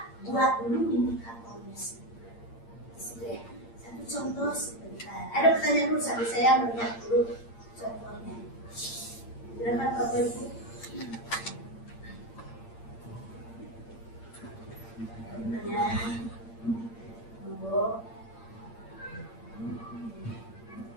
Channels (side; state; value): right; late; 8.7 ms